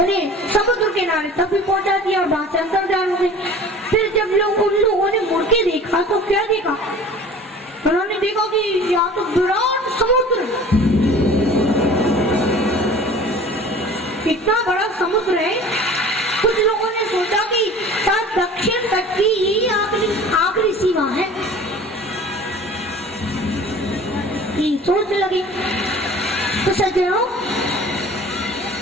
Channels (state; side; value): normal; both; correlation 0.44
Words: समुद्र के किनारे तक भी पहुंचा दिया और वहां से अंतर्धान हो गए। फिर जब उन लोगों ने मुड़ के देखा तो क्या देखा? उन्होंने देखा कि यहाँ तो विराट समुद्र, इतना बड़ा समुद्र है। कुछ लोगों ने सोचा कि शायद दक्षिण तट की यही आखिरी सीमा है, सोच लगी। तो सज्जनों,